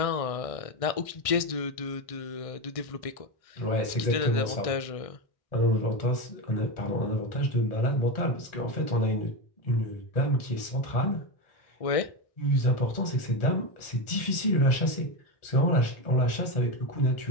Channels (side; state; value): right; late; 1.6 ms